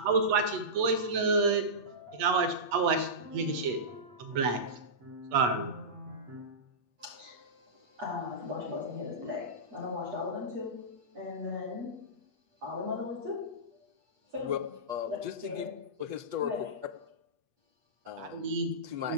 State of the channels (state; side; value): late; left; 8.3 ms